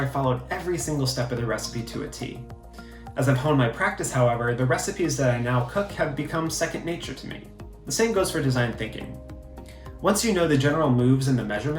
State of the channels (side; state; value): both; identical; correlation 1.00